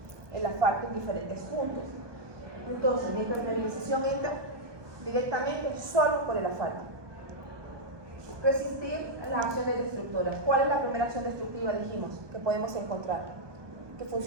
el asfalto en diferentes puntos. Entonces, la impermeabilización entra directamente solo por el asfalto. Resistir las acciones destructoras. ¿Cuál es la primera acción destructiva, dijimos, que podemos encontrar? Que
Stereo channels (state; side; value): late; left; 1.2 ms